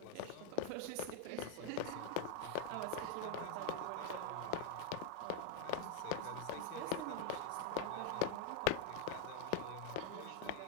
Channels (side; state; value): both; different; correlation 0.00